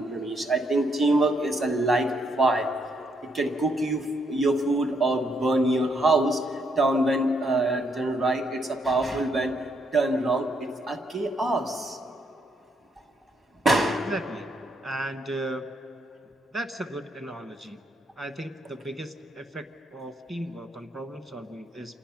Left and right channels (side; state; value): both; normal; correlation 0.74